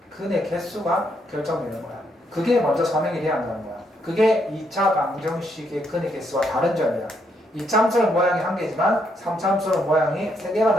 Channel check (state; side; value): normal; both; correlation 0.75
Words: 근의 개수가 결정되는 거야. 그게 먼저 설명이 돼야 한다는 거야. 그게 2차 방정식의 근의 개수와 다른 점이야. 2참수는 모양이 한 개지만 3참수는 모양이 세 개가